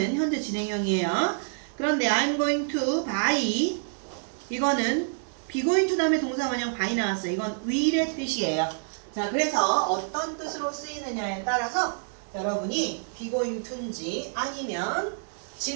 현재 진행형이에요. 그런데 I'm going to buy 이거는 be going to 다음에 동사 원형 buy 나왔어요. 이건 will의 뜻이에요. 자, 그래서 어떤 뜻으로 쓰이느냐에 따라서 여러분이 be going to인지 아니면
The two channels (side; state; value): left; silent; digital silence